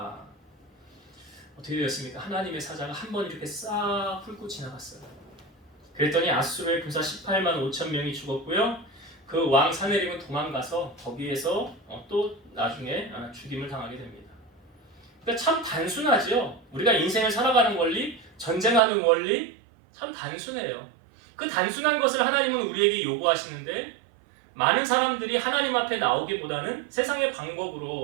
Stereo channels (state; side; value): drops out; left; at 18.8 s